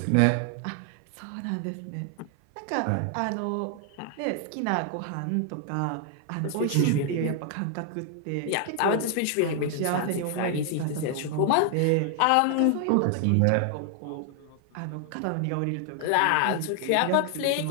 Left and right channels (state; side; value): different; both; correlation 0.00